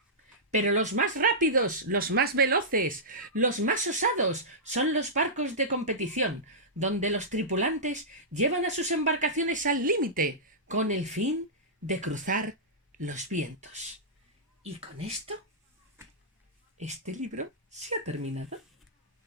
Pero los más rápidos, los más veloces, los más osados son los barcos de competición, donde los tripulantes llevan a sus embarcaciones al límite, con el fin de cruzar los vientos. Y con esto, este libro se ha terminado.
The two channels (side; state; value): both; normal; correlation -0.14